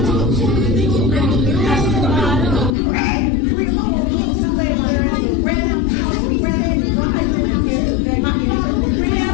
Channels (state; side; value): drops out; right; at 2.7 s